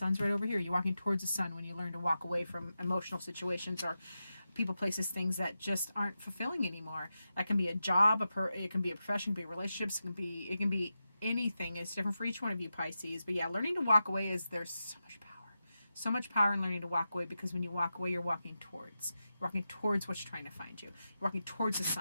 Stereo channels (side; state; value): both; inverted; correlation -0.90